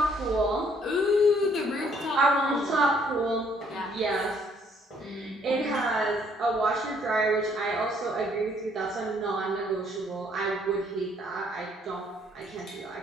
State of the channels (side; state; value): both; normal; correlation 0.65